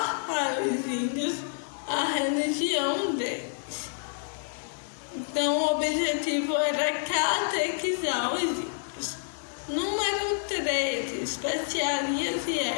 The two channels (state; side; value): silent; right; digital silence